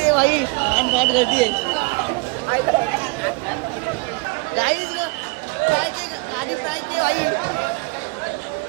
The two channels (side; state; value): left; quieter; 28.5 dB